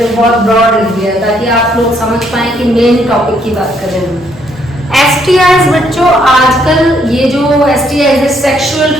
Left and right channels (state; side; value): normal; both; correlation 0.70